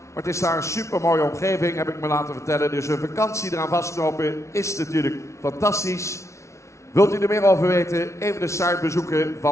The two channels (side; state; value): right; late; 0.14 ms